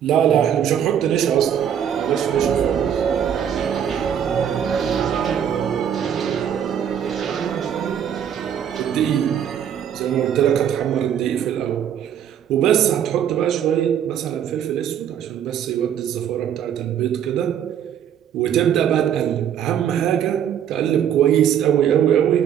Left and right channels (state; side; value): quieter; left; 9.2 dB